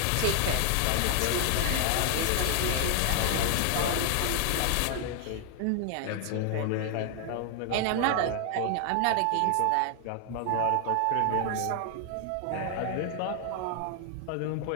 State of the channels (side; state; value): both; different; correlation 0.00